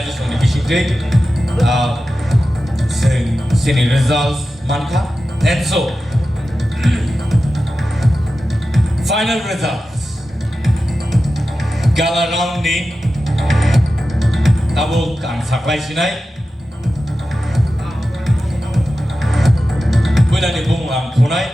on the issue day. Senior results, manka. And so, final results. Gala round ni abo ang saklay sinay. Pwede ni bung ang punay.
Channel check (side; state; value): both; normal; correlation 0.93